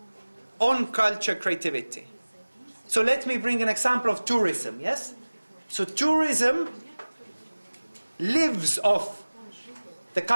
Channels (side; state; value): both; inverted; correlation -1.00